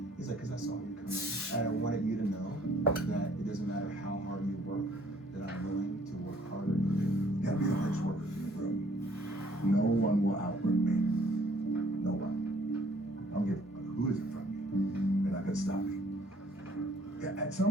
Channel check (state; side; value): normal; both; correlation 0.61